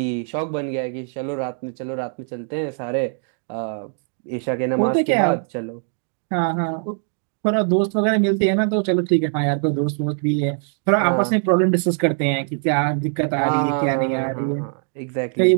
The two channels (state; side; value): silent; left; 64 dB below the other